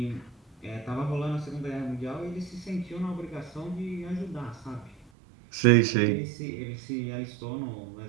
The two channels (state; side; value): drops out; left; at 5.1 s